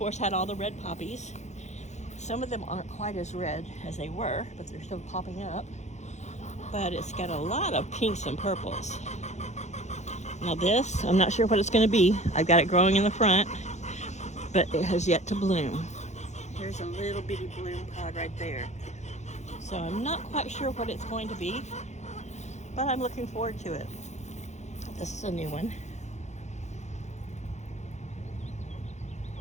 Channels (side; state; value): right; late; 0.33 ms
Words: had all the red poppies. Some of them aren't quite as red as they were, but they're still popping up. But it's got a lot of pinks and purples. Now this, I'm not sure what it's going to be. I've got it growing in the front, but it has yet to bloom. There's a little bitty bloom pod right there. So I'm not quite sure what it's going to be, but I'm looking forward to it. This is a new one.